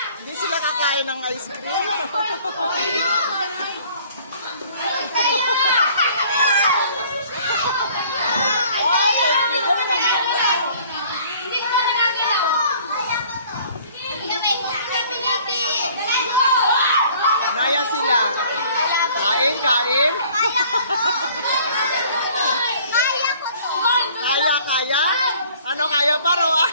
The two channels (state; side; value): inverted; both; correlation -0.54